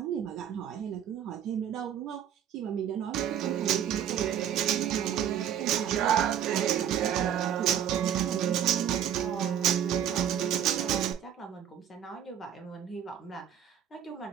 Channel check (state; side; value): quieter; left; 9.6 dB